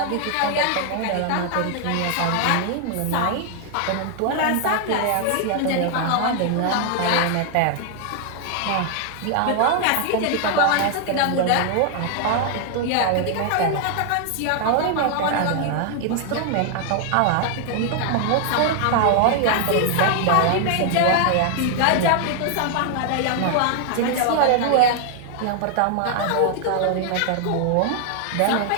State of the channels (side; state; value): both; different; correlation 0.00